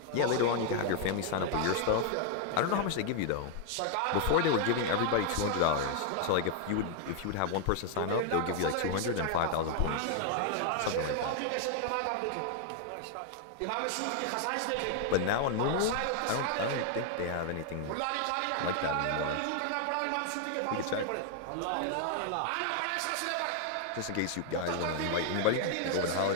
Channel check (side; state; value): both; different; correlation 0.00